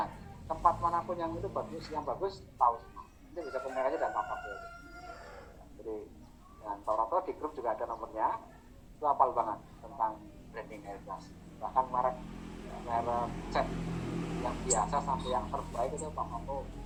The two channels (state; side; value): identical; both; correlation 1.00